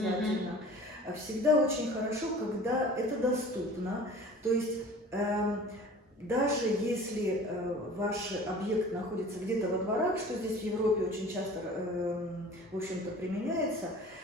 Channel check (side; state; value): both; normal; correlation 0.44